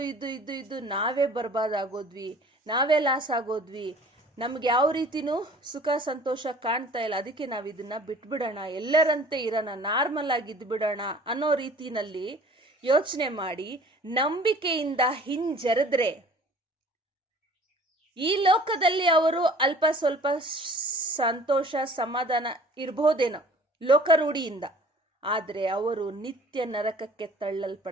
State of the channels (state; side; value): normal; both; correlation 0.49